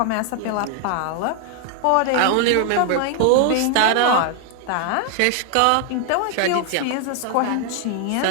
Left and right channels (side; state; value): both; different; correlation 0.00